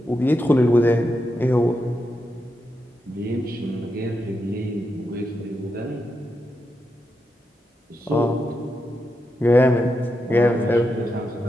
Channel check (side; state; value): both; normal; correlation 0.86